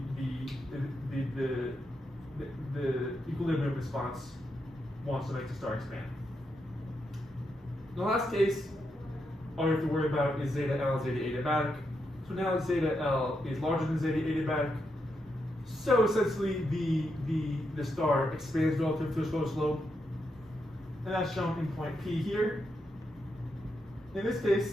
equilibrium response wants to make the star expand. The last case, all you have to worry about is zeta L, zeta adiabatic. So now zeta L is larger than zeta adiabatic. So essentially, the star expands relative to its low slope, and that's shown in point P here. In this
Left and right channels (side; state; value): both; normal; correlation 0.83